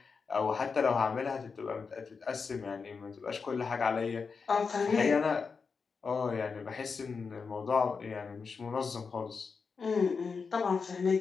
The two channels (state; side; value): quieter; right; 5.2 dB